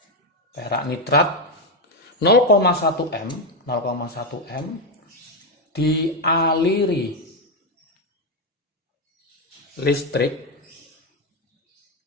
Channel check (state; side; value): normal; both; correlation 0.07